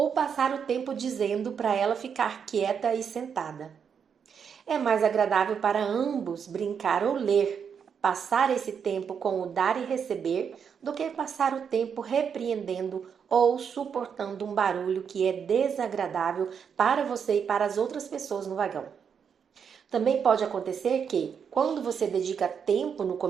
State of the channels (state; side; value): quieter; left; 7.1 dB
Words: passar o tempo dizendo para ela ficar quieta e sentada. É mais agradável para ambos brincar ou ler, passar esse tempo com o dar e receber, do que passar o tempo repreendendo ou suportando um barulho que é desagradável para você e para as outras pessoas no vagão. Também pode acontecer que, quando você dedica tempo no